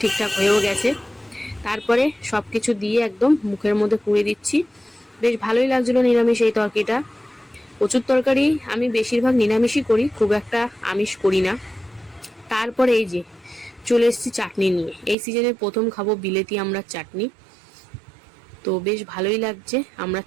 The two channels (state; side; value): drops out; left; at 15.2 s